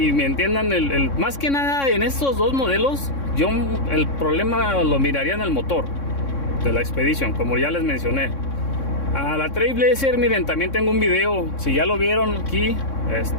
me entiendan más que nada en estos dos modelos. Yo el problema lo miraría en el motor de la Expedition, como ya les mencioné. A la Trailblazer, miren, también tengo un video. Si ya lo vieron aquí,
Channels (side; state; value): right; late; 3.6 ms